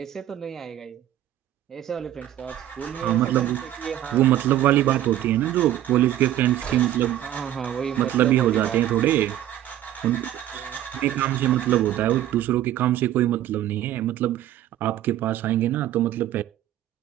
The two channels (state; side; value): quieter; left; 12.6 dB